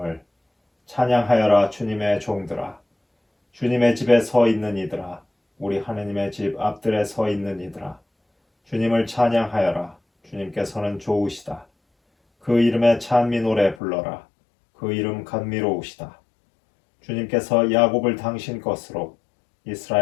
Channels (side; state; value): right; drops out; at 13.8 s